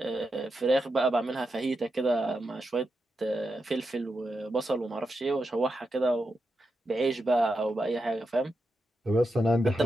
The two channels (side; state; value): both; normal; correlation 0.87